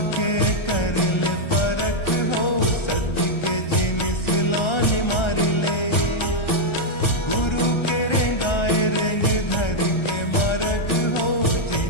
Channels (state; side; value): late; right; 1.3 ms